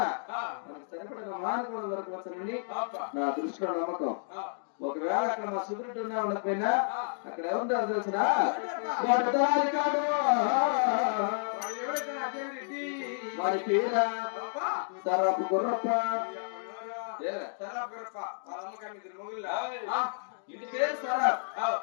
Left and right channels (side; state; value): right; silent; digital silence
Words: మనకు సరిపడిన మానవుడు దొరకవచ్చునని నా దృష్టిలో నమ్మకం. ఒకవేళ అక్కడ మా సుబ్రెడ్డి ఉన్నా ఉండకపోయినా అక్కడ ఏముంటారు తెలిసిన వాడి పేర సరపు గుర్రప్ప ఇంటి పేరు సరాబ్